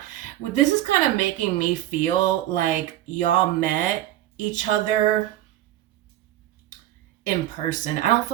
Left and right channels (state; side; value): quieter; left; 14.0 dB